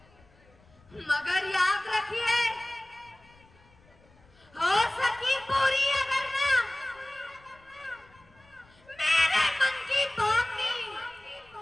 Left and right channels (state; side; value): noise; left; rumble, 29 dB below the sound